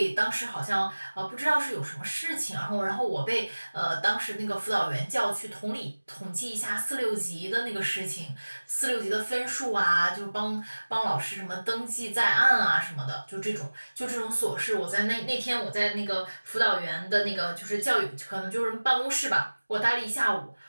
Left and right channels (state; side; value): inverted; both; correlation -1.00